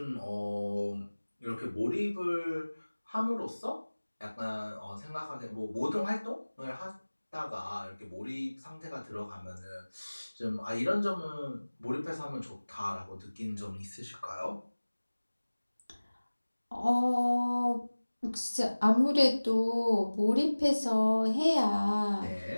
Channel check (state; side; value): inverted; both; correlation -1.00